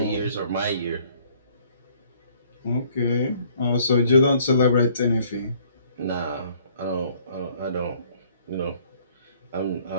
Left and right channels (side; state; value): both; inverted; correlation -0.60